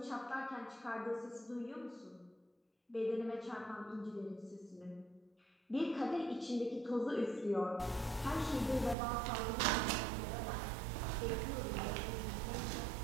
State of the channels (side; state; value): left; drops out; at 9.0 s